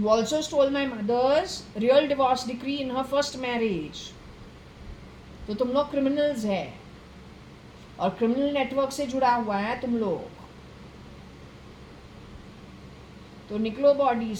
also stole my mother's real divorce decree in her first marriage. तो तुम लोग criminals है और criminal network से जुड़ा हुआ है तुम लोग. तो निकलो बॉडी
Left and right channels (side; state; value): both; identical; correlation 1.00